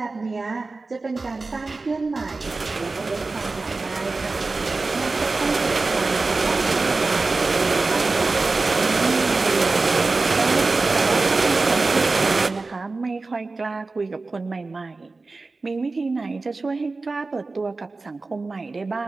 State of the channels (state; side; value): quieter; left; 3.7 dB